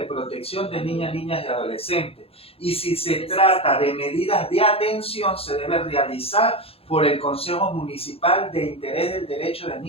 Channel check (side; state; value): right; late; 0.28 ms